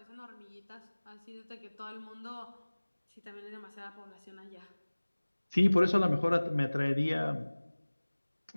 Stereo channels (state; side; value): inverted; both; correlation -1.00